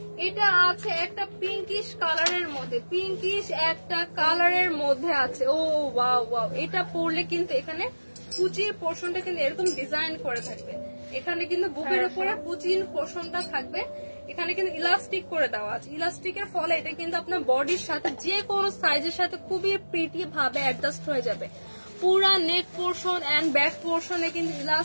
এটা আছে একটা পিঙ্কিশ কালারের মধ্যে, পিঙ্কিশ একটা কালারের মধ্যে আছে। ও ওয়াও ওয়াও, এটা পরলে কিন্তু এখানে কুচির পোর্শনটা কিন্তু এরকম ডিজাইন করে থাকবে, এখানে কিন্তু বুকের উপরে কুচির পোর্শনটা থাকবে। এখানে কিন্তু ইলাস্টিক করে দেওয়া আছে। ইলাস্টিকের ফলে এটা কিন্তু আপনার বডির সাথে যে কোনো সাইজের সাথে খুবই প্রিটি ভাবে অ্যাডজাস্ট হয়ে যাবে। পুরা নেক পোর্শন এন্ড ব্যাক পোর্শনে কিন্তু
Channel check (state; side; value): inverted; both; correlation -1.00